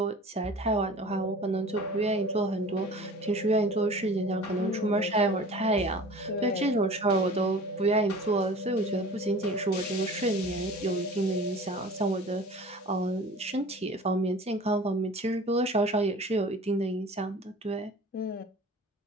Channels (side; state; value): both; normal; correlation 0.42